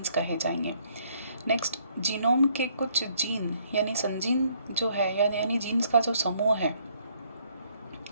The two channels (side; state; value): both; inverted; correlation -0.67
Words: कहे जाएंगे। नेक्स्ट जीनोम के कुछ जीन यानी संजीन जो है, यानी जीन्स का जो समूह है